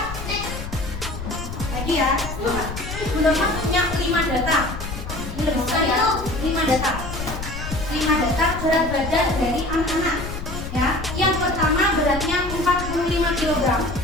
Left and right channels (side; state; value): left; noise; rumble, 8 dB below the sound